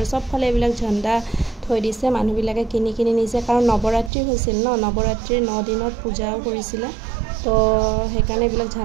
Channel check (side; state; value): left; drops out; at 4.1 s